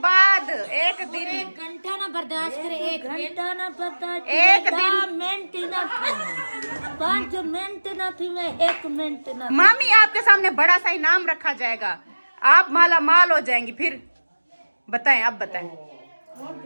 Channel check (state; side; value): inverted; both; correlation -1.00